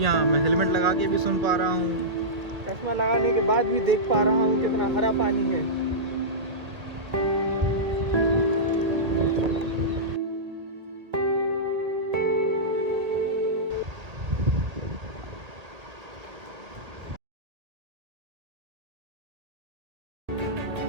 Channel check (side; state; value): left; late; 1.8 ms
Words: हाँ, मैं हेलमेट लगा के भी सुन पा रहा हूँ। चश्मा लगाने के बाद भी देख पा रहा हूँ कितना हरा पानी है।